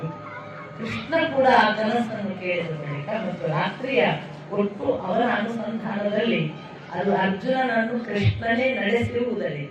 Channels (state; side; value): identical; both; correlation 1.00